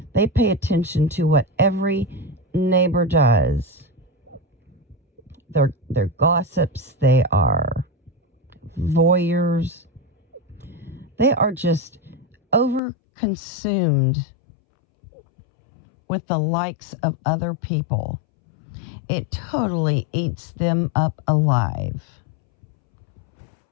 They pay attention to what every neighbor does. They're gossips. They are voyeurs. They are just overconsumed with the likes of other people. It totally eats them up alive.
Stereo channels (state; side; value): drops out; right; at 12.8 s